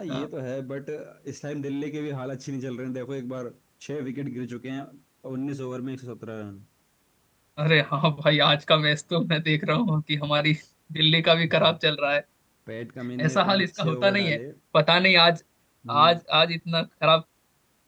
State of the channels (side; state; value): both; identical; correlation 1.00